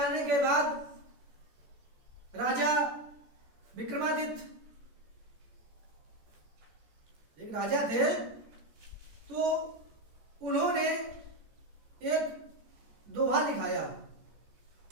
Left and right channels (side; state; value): left; late; 14 ms